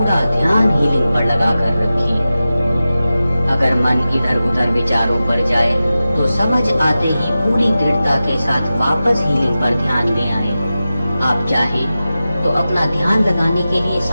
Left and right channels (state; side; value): inverted; both; correlation -0.94